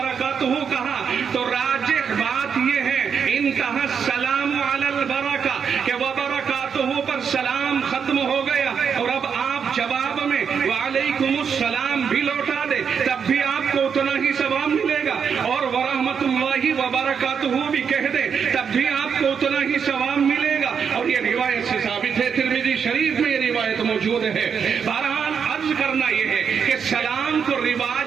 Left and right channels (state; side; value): quieter; left; 6.8 dB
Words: کہا تو راجح بات یہ ہے انتہا السلام علی البرکہ کہ وبرکاتہ پر سلام ختم ہو گیا، اور اب آپ جواب میں وعلیکم السلام بھی لوٹا دے تب بھی آپ کو اتنا ہی ثواب ملے گا، اور ورحمۃ اللہ وبرکاتہ بھی کہہ دے تب بھی آپ کو اتنا ہی ثواب ملے گا. اور یہ روایت سے ثابت ہے، ترمذی شریف میں یہ روایت موجود ہے. بہرحال عرض کرنا یہ ہے کہ سلام کو